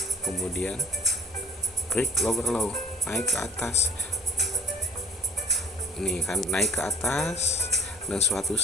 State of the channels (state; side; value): normal; both; correlation 0.48